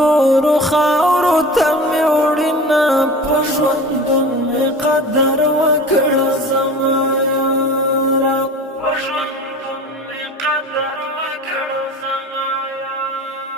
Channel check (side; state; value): both; normal; correlation 0.37